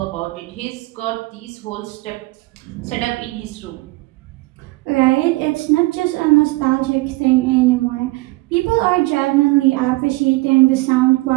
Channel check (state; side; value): quieter; left; 22.1 dB